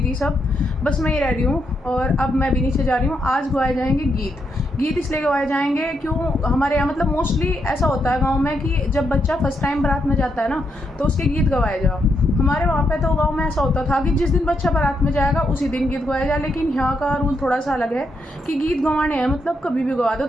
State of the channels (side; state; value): both; normal; correlation 0.80